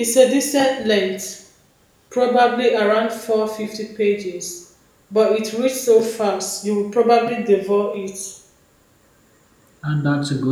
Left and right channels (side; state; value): both; identical; correlation 1.00